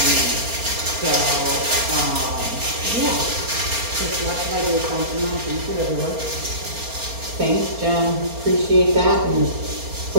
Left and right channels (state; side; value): late; left; 4.3 ms